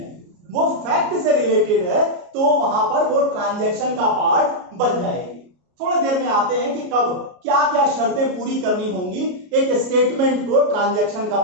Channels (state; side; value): late; left; 33 ms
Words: वो फैक्ट से रिलेटेड है, तो वहां पर वो ट्रांजैक्शन का पार्ट बन जाएगी। थोड़ी देर में आते हैं कि कब क्या क्या शर्तें पूरी करनी होंगी एक स्टेटमेंट को ट्रांजैक्शन का